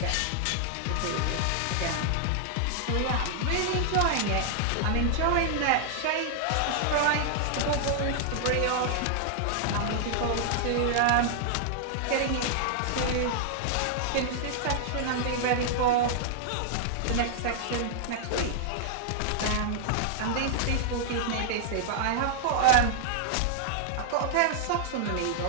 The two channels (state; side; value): different; both; correlation -0.01